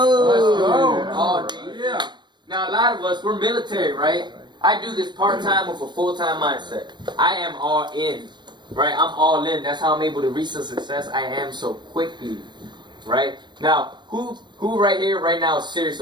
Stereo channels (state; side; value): late; left; 0.22 ms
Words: All day. Yeah. Now a lot of us, we're military, right? I do this part time with a full time mindset. I am all in, right? I'm all in. That's how I'm able to reach the success I am so quickly, right? Now, who right here, right now, is serious